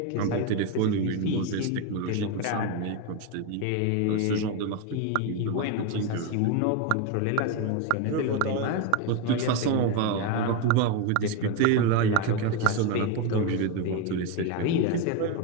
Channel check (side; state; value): both; different; correlation 0.03